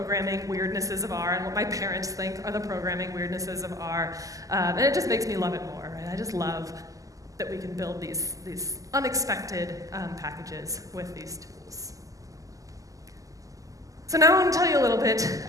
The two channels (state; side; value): late; left; 0.17 ms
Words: weirdnesses of R, and what my parents think are the programming weirdnesses of R. And it just makes me love it more, right? I just love that we can build these unexpected packages with these tools. So now I want to tell you a little bit